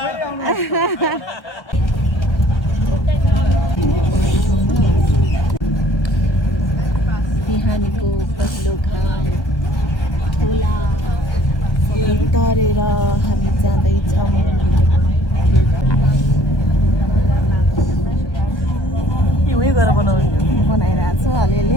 आउनु बिहानीको पहिलो घाम खोला तरेर हामी जाँदैछौँ। बनाइरहेको छु अलिअलि।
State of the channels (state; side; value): late; right; 1.1 ms